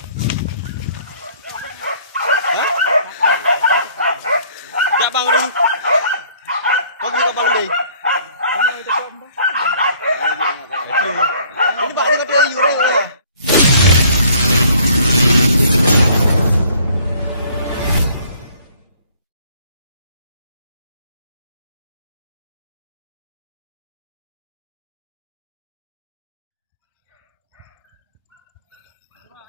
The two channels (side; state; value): both; inverted; correlation -0.59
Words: Dạ băng đi. Có gì có băng đi. Ini bạn đi cái gì đây?